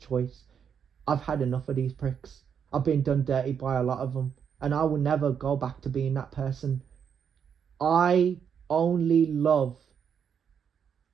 I've had enough of these pricks. I've been done dirty by a lot of them, and I will never go back to being that person. I only love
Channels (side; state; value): left; quieter; 7.5 dB